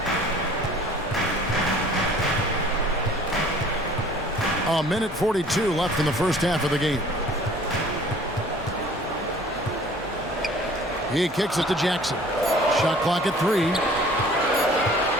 A minute 42 left in the first half of the game. He kicks it to Jackson. Shot clock at 3.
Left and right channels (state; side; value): normal; both; correlation 0.51